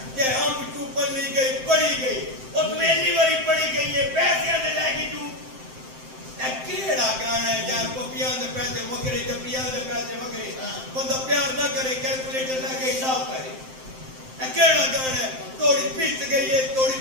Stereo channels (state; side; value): late; left; 7.7 ms